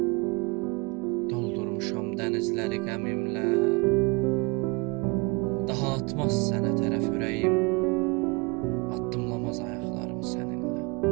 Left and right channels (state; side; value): quieter; left; 28.4 dB